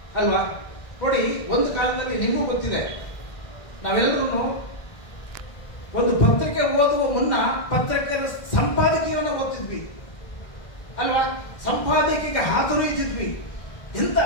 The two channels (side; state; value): right; late; 1.6 ms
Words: ಅಲ್ವಾ. ನೋಡಿ, ಒಂದು ಕಾಲದಲ್ಲಿ ನಿಮಗೂ ಗೊತ್ತಿದೆ, ನಾವೆಲ್ಲರೂ ಒಂದು ಪತ್ರಿಕೆ ಓದುವ ಮುನ್ನ ಪತ್ರಿಕೆಯ ಸಂಪಾದಕೀಯವನ್ನು ಓದ್ತಿದ್ವಿ ಅಲ್ವಾ. ಸಂಪಾದಕಿಗೆ ಹಾತೊರೆಯುತ್ತಿದ್ವಿ. ಎಂತ